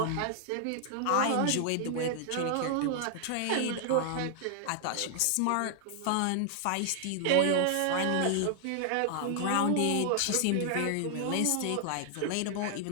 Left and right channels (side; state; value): both; different; correlation 0.00